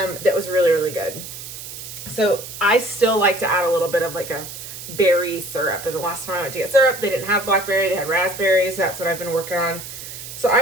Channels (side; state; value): right; noise; hiss, 11 dB below the sound